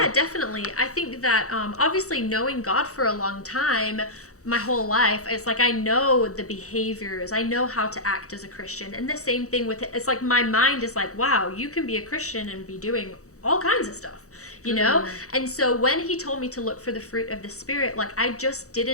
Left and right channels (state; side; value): late; right; 0.65 ms